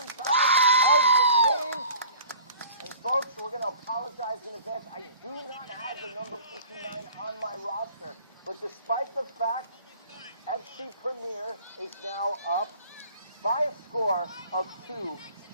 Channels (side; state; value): both; inverted; correlation -0.47